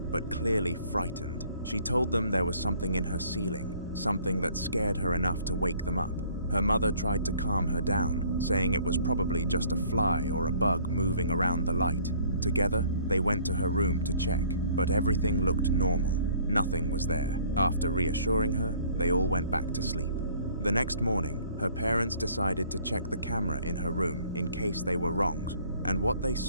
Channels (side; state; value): both; inverted; correlation -0.57